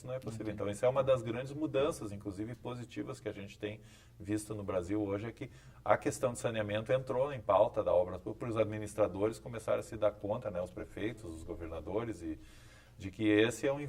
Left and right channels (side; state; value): both; identical; correlation 1.00